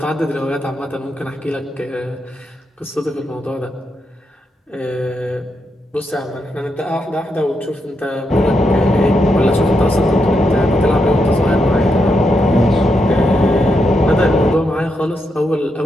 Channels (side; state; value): both; normal; correlation 0.82